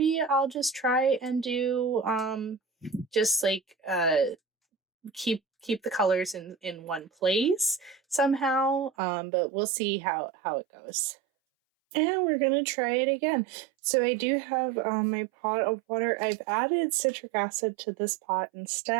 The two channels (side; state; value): left; drops out; at 8.9 s